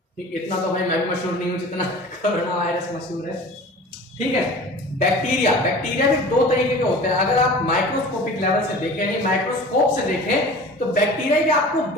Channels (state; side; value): normal; both; correlation 0.41